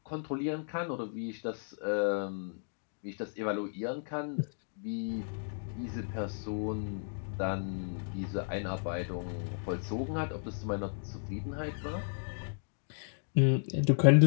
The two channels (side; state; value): right; silent; digital silence